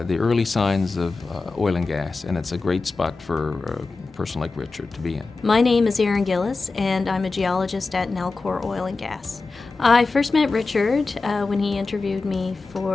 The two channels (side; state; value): right; quieter; 3.9 dB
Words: early signs of oil and gas, and it's a great spot for a person like Richard to be in. My name is Erin Gillis, and I'm a geologist at Nalcor Oil and Gas. I first met Richard when he interviewed me